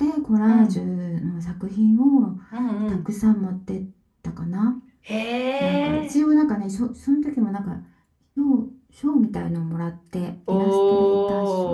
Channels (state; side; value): identical; both; correlation 1.00